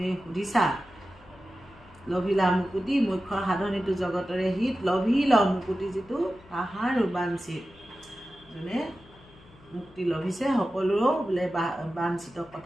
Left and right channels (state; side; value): noise; left; hum, 25 dB below the sound